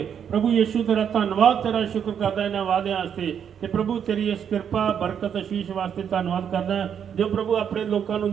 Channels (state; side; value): quieter; left; 8.2 dB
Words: ਪ੍ਰਭੂ ਯੀਸ਼ੂ ਤੇਰਾ ਧੰਨਵਾਦ, ਤੇਰਾ ਸ਼ੁਕਰ ਕਰਦਾ ਇਹਨਾਂ ਵਾਅਦਿਆਂ ਵਾਸਤੇ ਤੇ ਪ੍ਰਭੂ ਤੇਰੀ ਇਸ ਕਿਰਪਾ ਬਰਕਤ ਆਸ਼ੀਸ਼ ਵਾਸਤੇ ਧੰਨਵਾਦ ਕਰਦਾ ਜੋ ਪ੍ਰਭੂ ਆਪਣੇ ਲੋਕਾਂ ਨੂੰ